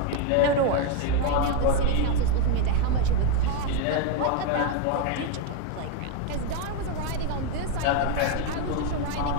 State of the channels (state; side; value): different; both; correlation 0.01